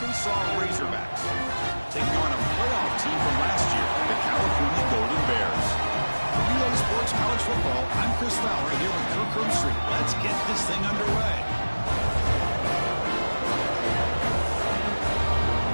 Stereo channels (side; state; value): both; inverted; correlation -1.00